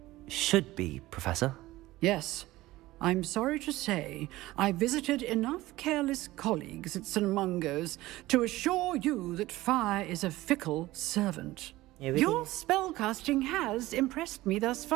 Should be, Professor. Yes. I'm sorry to say, I visited enough careless colleagues at St. Mungo's to assure you that fire is a fickle servant. Your spellcasting has impressed me thus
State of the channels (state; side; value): quieter; left; 17.7 dB